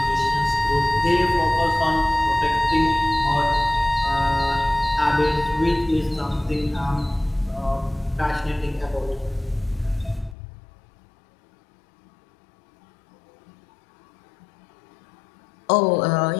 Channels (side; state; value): right; drops out; at 10.4 s